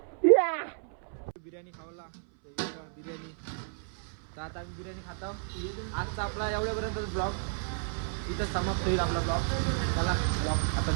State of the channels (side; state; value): left; silent; 57 dB below the other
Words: या. बिर्याणी खावला बिर्याणी. तर आता आम्ही बिर्याणी खातो. आजचा आपला एवढ्यापर्यंत ब्लॉग इथं समाप्त होईल आपला ब्लॉग. चला ब्लॉग आता